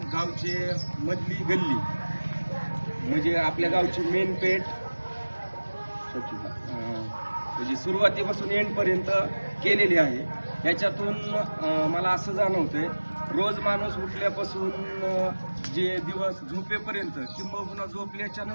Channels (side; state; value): both; inverted; correlation -1.00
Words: गावची मधली गल्ली म्हणजे आपल्या गावची मेन पेठ म्हणजे सुरुवातीपासून एंडपर्यंत केलेली आहे. याच्यातून मला असं जाणवतंय, रोज माणूस उठल्यापासून जे दिवस झोपेपर्यंत किंबहुना झोपल्याच्या